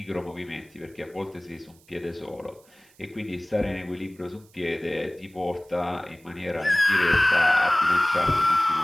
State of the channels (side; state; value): right; noise; hiss, 29 dB below the sound